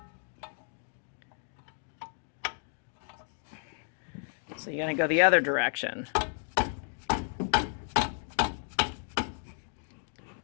So you're going to go the other direction.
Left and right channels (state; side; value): silent; right; 56 dB below the other